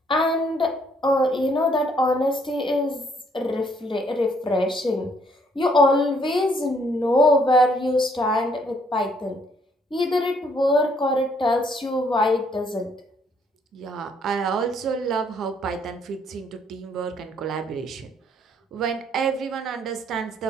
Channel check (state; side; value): normal; both; correlation 0.67